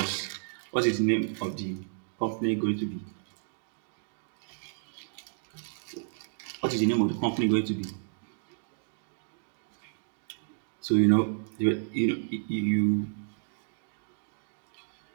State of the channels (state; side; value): silent; left; digital silence